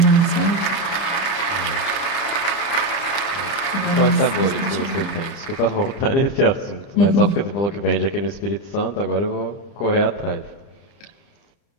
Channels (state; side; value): late; right; 30 ms